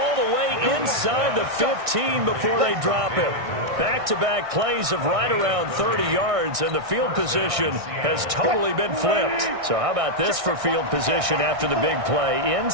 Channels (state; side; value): late; left; 1.6 ms